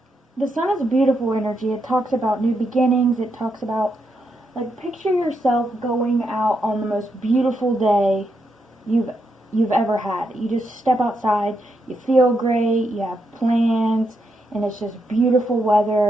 The Sun is a beautiful energy. It talks about new beginnings. It talks about, like, picture yourself going out on the most beautiful day you've ever had. You just step outside, you feel great, you have plans, and it's just beautiful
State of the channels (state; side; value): normal; both; correlation 0.81